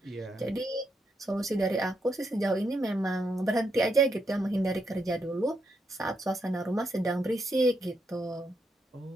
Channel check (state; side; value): normal; both; correlation 0.80